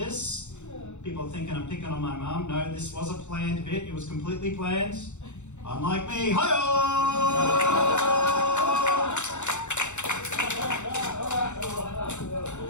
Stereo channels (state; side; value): late; right; 0.84 ms